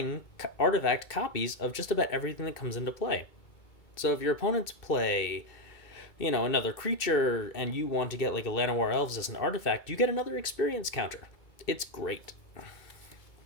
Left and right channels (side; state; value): right; late; 2.6 ms